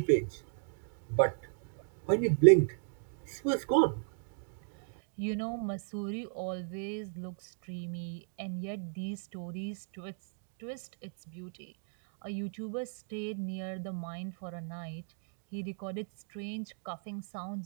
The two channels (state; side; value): silent; left; digital silence